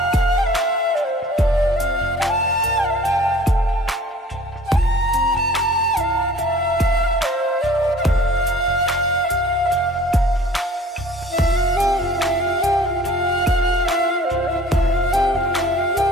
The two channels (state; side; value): normal; both; correlation 0.50